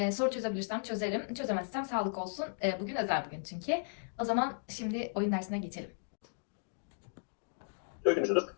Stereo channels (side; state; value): right; silent; digital silence